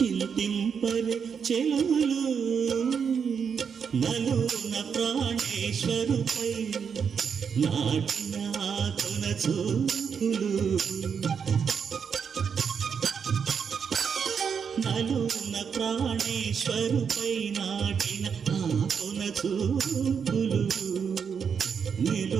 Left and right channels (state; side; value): quieter; left; 6.7 dB